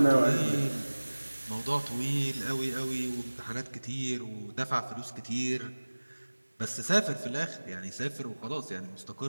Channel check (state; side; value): inverted; both; correlation -1.00